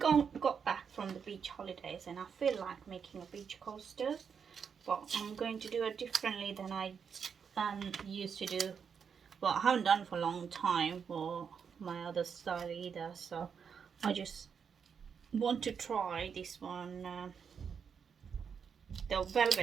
back from the beach holidays and I feel like making a beach coaster, but I'm going to do it differently than I used to do. Well, I haven't done for a long time for my other style either, so I just want to try this one. The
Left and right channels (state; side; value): quieter; left; 6.7 dB